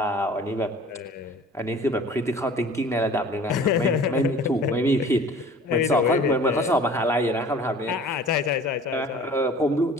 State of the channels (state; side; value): normal; both; correlation 0.46